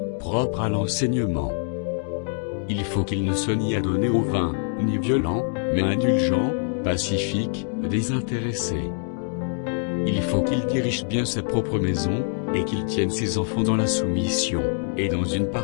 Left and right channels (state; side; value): silent; right; 59 dB below the other